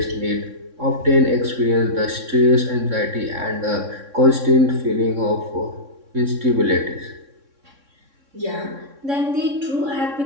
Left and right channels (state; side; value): late; left; 3.6 ms